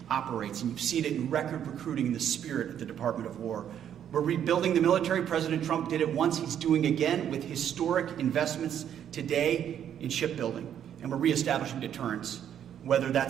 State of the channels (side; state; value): left; quieter; 9.6 dB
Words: operates. And you've seen it in record recruiting in the spirit at the Department of War. We're rebuilding the military. President Trump did it once. He's doing again with historic investments today in shipbuilding. And we're reestablishing deterrence, whether